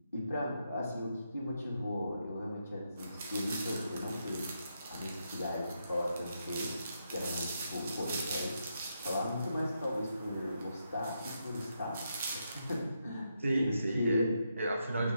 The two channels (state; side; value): inverted; both; correlation -0.82